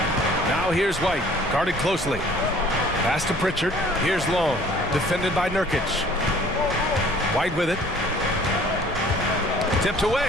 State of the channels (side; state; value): both; normal; correlation 0.53